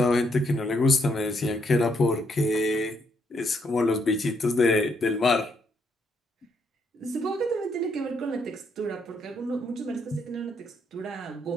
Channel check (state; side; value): normal; both; correlation 0.74